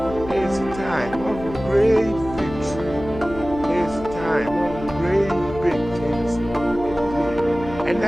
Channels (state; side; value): noise; left; hum, 12 dB below the sound